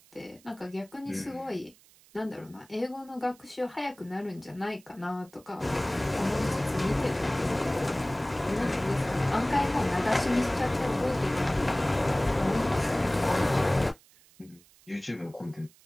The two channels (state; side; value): noise; right; hiss, 27 dB below the sound